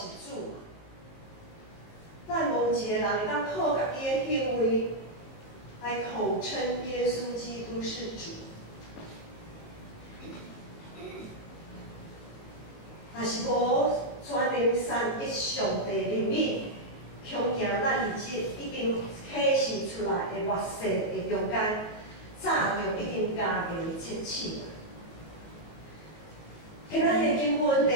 主。咱无一个人会当靠家己的行为来口称耶稣基督是主。若是无全能三一上帝灵力，恐惊咱已经启示出来的热势的中间，早就已经加入切切了。今仔日经文第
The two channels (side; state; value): right; late; 19 ms